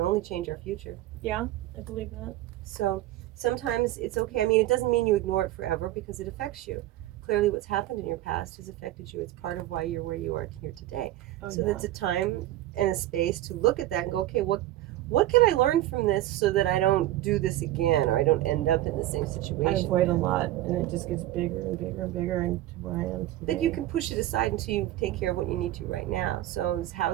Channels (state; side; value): quieter; left; 14.9 dB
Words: change our future. Yeah, I believe that. So sometimes it's okay. I mean, it doesn't mean you ignore it forever because it affects you. Clearly what's happened in your past has affected you. It's part of why you're where you are here today. So that's a time and a space to look at that and go, okay, what can I learn from this so that I don't do this again or I don't end up in the same situation? I avoid a lot, and it just gets bigger and bigger and bigger into where I am today. Then you can push it aside until you take care of what you need to right now. So is